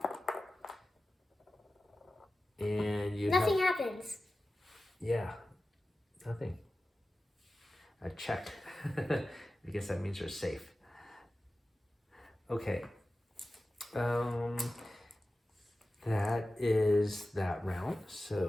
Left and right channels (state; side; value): normal; both; correlation 0.95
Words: Yep. And you Nothing happens. Yeah, nothing. A check. I guess that means you're safe. Okay. That is that round.